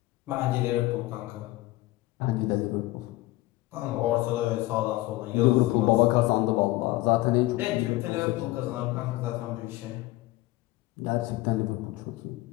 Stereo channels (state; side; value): quieter; right; 18.7 dB